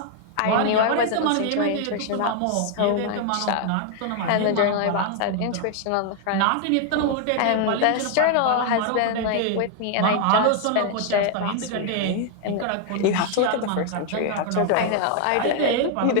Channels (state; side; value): different; both; correlation 0.00